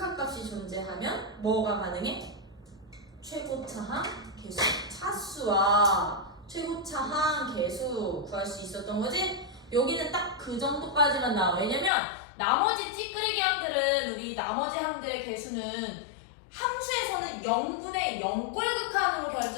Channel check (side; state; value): right; drops out; at 11.9 s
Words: 존재하면 뭐가 가능해? 최고차항 계수. 차수와 최고차항 계수 구할 수 있었던 거지? 여기는 딱 그 정도까지만 나와. 왜냐면 나머지 찌끄레기 항들은 우리 나머지 항들의 개수는 함수에서는 0분의 0꼴 극한으로